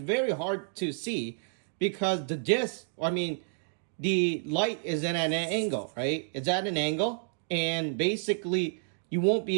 very hard to see because the disc, the light is at an angle, right? It's at an angle and basically you won't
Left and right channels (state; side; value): silent; left; digital silence